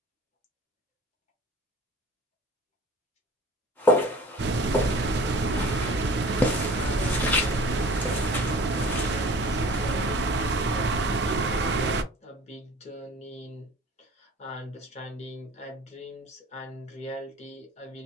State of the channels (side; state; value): both; normal; correlation 0.44